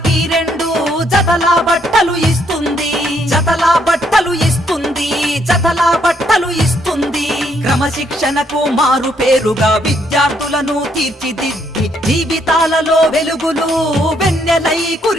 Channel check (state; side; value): normal; both; correlation 0.72